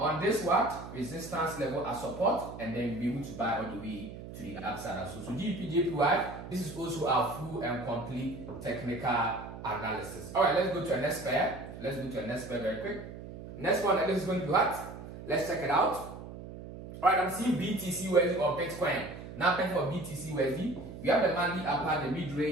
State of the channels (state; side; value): noise; right; hum, 12 dB below the sound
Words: this resistance level as support, and then be able to buy all the way to the upside as well. So GBP JPY, this is also our full and complete technical analysis. Alright, let's go to our next pair. Let's go to our next pair very quick. Next one, that is going to be what? Let's check it out. Alright, I'm seeing BTC USD or Bitcoin. Now, for BTC USD, we have the monthly upper, the mid